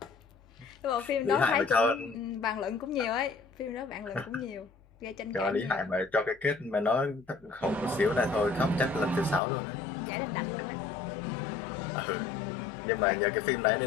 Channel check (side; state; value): right; drops out; at 9.4 s